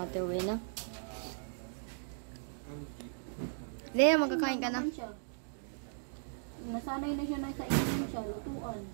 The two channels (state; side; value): silent; left; digital silence